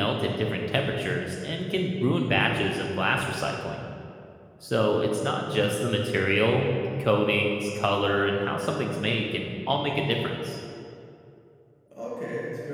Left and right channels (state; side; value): identical; both; correlation 1.00